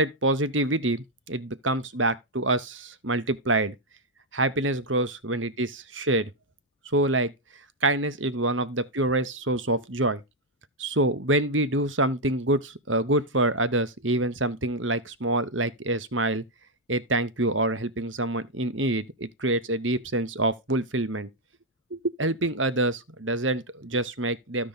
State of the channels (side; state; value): both; normal; correlation 0.00